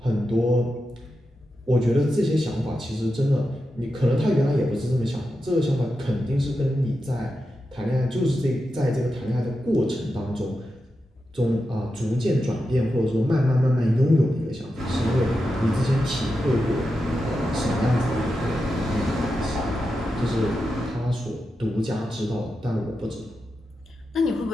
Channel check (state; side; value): normal; both; correlation 0.89